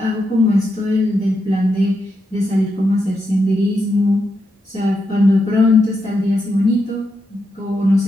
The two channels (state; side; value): normal; both; correlation 0.84